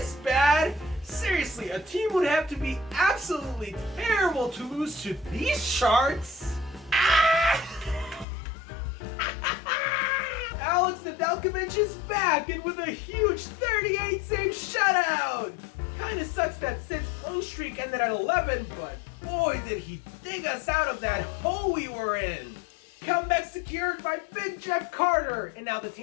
bad. Seriously, a team would have to be absolutely terrible to lose to these Sharks. Alex Nedeljkovic is back and with a huge 38-save shutout! Kinda sucks that Sid's point streak ended at 11, but boy did he dig us out of that hole we were in! Comeback secured by Big Jeff Carter, and now the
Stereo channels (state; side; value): drops out; right; at 8.2 s